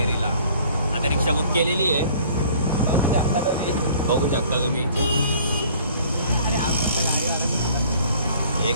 आता रिक्षा बुक केलेली आहे, बघू शकता तुम्ही. हे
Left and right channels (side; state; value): both; inverted; correlation -0.53